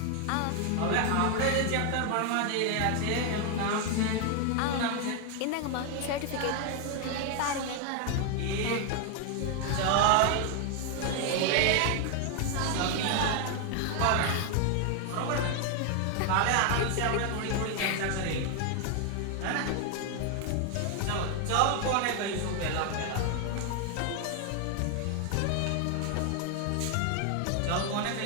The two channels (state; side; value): different; both; correlation 0.01